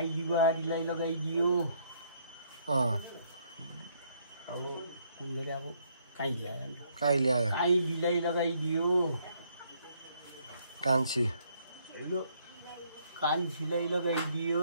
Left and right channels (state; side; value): inverted; both; correlation -0.68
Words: बुहारीलाई लगाइदियो। अब कुन गरे अब काइली आयो, काइलीलाई लगाइदियो। कान्छी कान्छीलाई